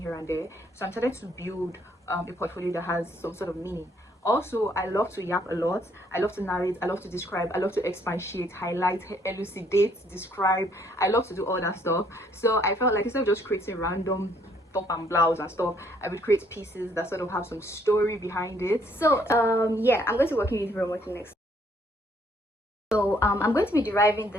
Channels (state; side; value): normal; both; correlation 0.66